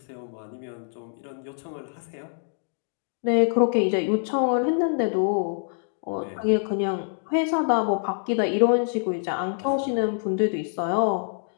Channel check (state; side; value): silent; right; digital silence